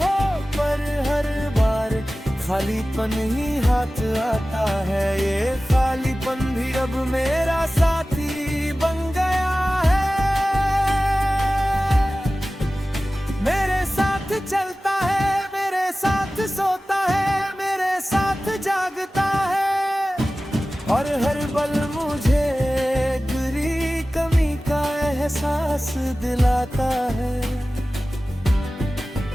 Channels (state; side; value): normal; both; correlation 0.96